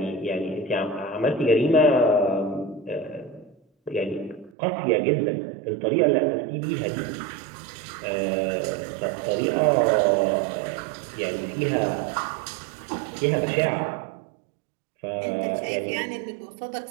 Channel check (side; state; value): left; drops out; at 4.5 s